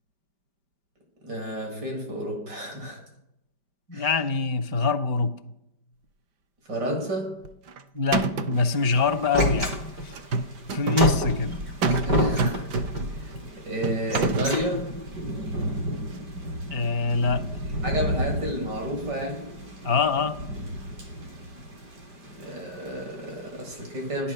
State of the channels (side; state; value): left; late; 5.1 ms